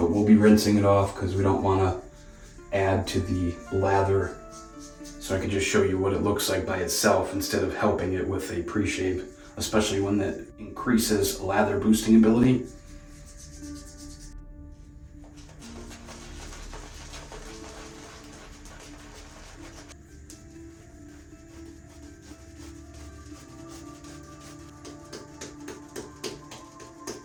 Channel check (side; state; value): both; identical; correlation 1.00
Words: we'll be rinsing it off because we don't want to add to the lather. So I can just show you what it looks like by itself instead of helping it with a pre-shave, especially when that increases lather boosting ability.